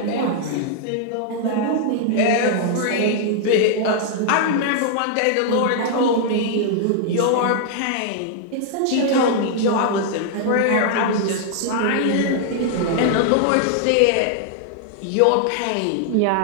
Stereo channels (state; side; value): different; both; correlation -0.01